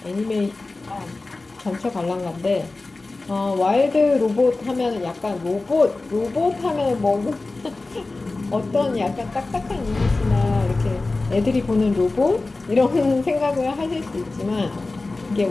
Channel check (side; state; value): right; quieter; 3.3 dB